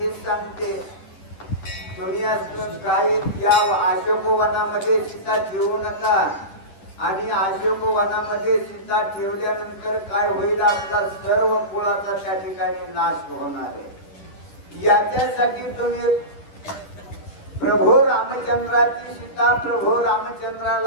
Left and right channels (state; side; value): late; right; 10 ms